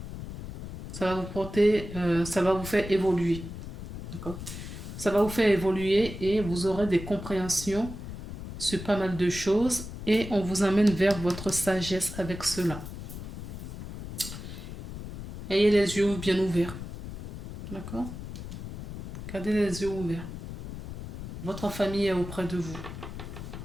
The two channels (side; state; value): left; noise; rumble, 9 dB below the sound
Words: Ça va vous faire évoluer. D'accord? Ça va vous faire évoluer et vous aurez des compréhensions sur pas mal de choses et on vous amène vers votre sagesse avec cela. Ayez les yeux bien ouverts. D'accord? Gardez les yeux ouverts. Votre famille est auprès de vous.